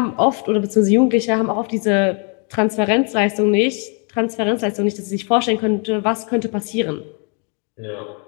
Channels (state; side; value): quieter; right; 37.9 dB